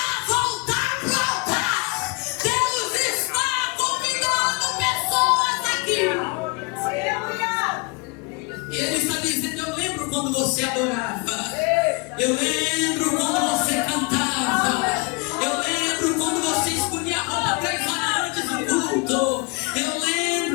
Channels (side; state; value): right; quieter; 29.7 dB